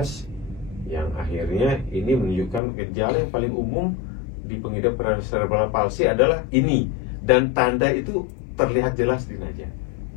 yang akhirnya ini menunjukkan gejala yang paling umum di pengidap cerebral palsy adalah ini, dan tanda itu terlihat jelas di Najah.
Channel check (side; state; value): right; drops out; at 2.6 s